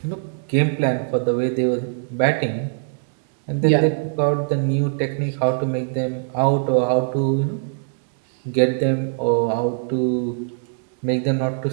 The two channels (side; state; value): left; silent; digital silence